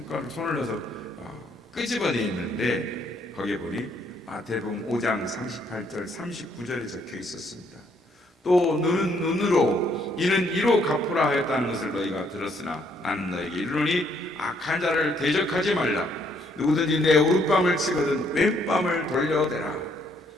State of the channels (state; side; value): normal; both; correlation 0.69